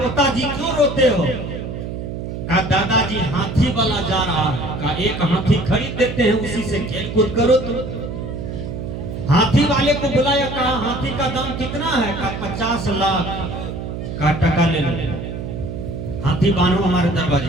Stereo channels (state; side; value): noise; right; hum, 6 dB below the sound